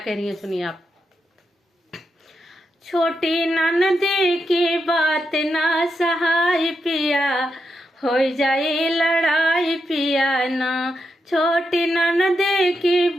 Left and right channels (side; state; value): both; normal; correlation 0.84